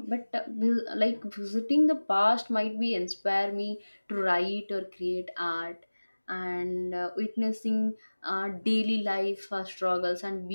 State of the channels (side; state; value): both; inverted; correlation -1.00